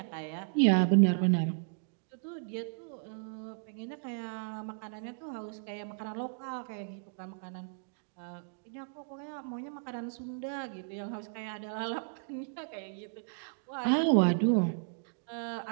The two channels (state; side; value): silent; left; digital silence